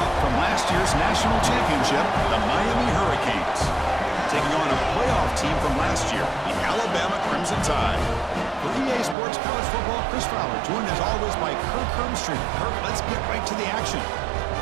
from last year's national championship, the Miami Hurricanes, taking on a playoff team from last year, the Alabama Crimson Tide. For EA Sports College Football, Chris Fowler, joined as always by Kirk Hermstreet. Kirk, let's get right to the action.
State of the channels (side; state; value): left; drops out; at 9.2 s